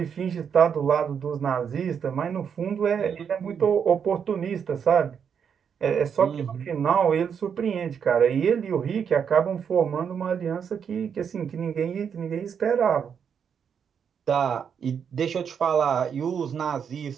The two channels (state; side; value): quieter; left; 7.4 dB